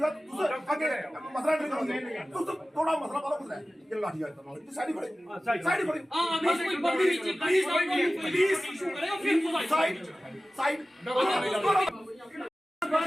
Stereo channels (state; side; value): normal; both; correlation 0.96